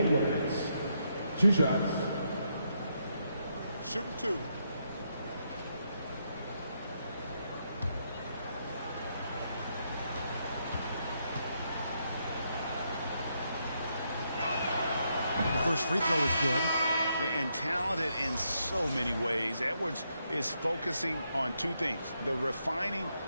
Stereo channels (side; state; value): both; inverted; correlation -0.79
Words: 2 shots. Shooting 2. The first free throw is good. And talented in so many ways. Edwards is focusing on 2 things: the refining